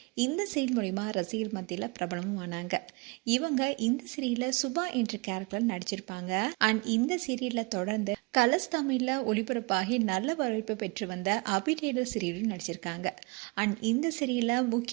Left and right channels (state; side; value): quieter; left; 28.4 dB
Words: இந்த சீரியல் மூலிமா ரசிகர் மத்தியில் பிரபலமும் ஆனாங்க. இவங்க இந்த சீரியலில் சுபா என்ற கேரக்டர் நடிச்சிருப்பாங்க. அண்ட் இந்த சீரியலில் தொடர்ந்து கலர்ஸ் தமிழில் ஒளிபரப்பாகி நல்ல வரவேற்பு பெற்று வந்த அபிடேடர் சீரியலில் நடிச்சிருக்காங்க. அண்ட் இந்த சீரியலில்